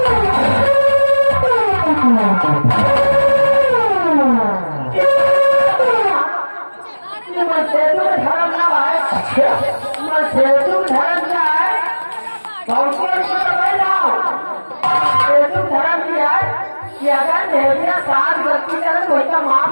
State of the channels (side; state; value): both; inverted; correlation -1.00